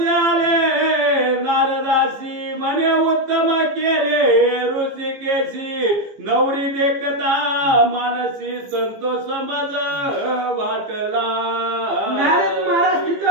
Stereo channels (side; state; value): left; late; 15 ms